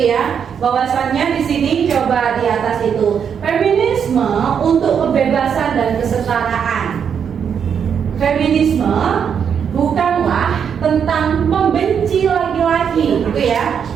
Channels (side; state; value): left; quieter; 7.5 dB